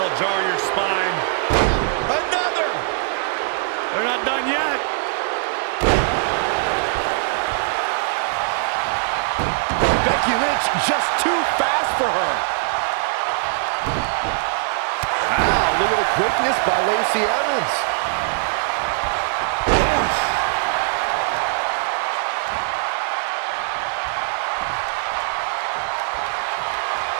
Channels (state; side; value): silent; left; digital silence